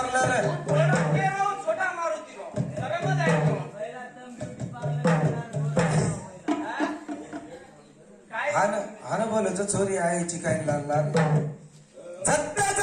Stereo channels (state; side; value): identical; both; correlation 1.00